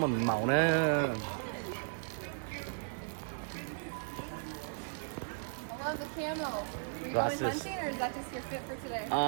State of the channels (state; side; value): silent; left; digital silence